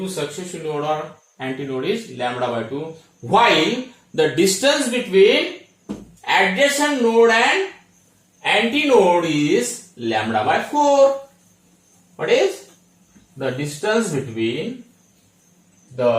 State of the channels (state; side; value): identical; both; correlation 1.00